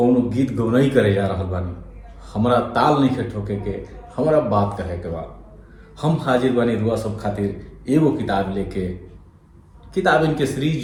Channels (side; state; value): both; identical; correlation 1.00